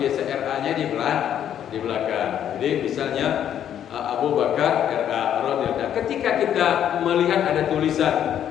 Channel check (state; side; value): quieter; right; 10.0 dB